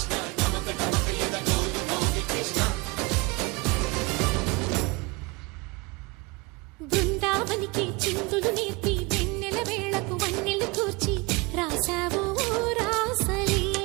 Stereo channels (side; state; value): left; quieter; 26.0 dB